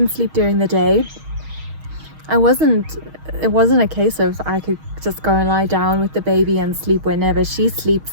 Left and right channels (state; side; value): late; left; 6.4 ms